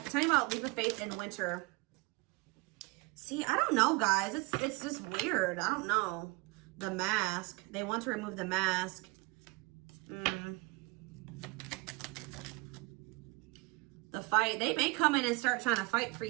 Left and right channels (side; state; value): left; quieter; 26.0 dB